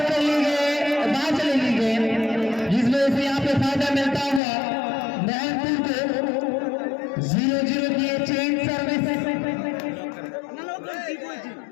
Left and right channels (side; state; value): right; drops out; at 4.4 s